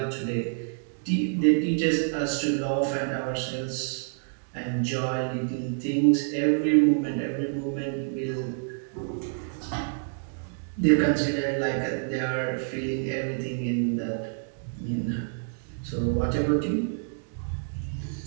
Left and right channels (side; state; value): left; silent; digital silence